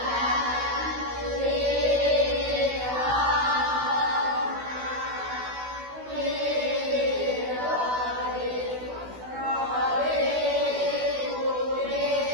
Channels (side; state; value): left; late; 16 ms